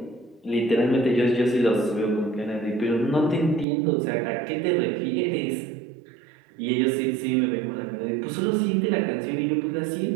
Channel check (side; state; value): left; drops out; at 3.7 s